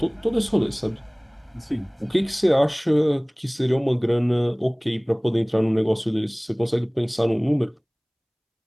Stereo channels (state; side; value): identical; both; correlation 1.00